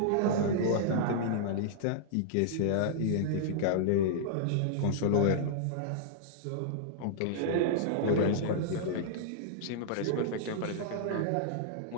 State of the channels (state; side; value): different; both; correlation -0.01